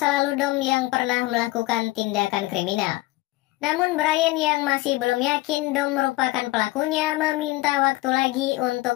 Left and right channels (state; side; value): quieter; right; 19.5 dB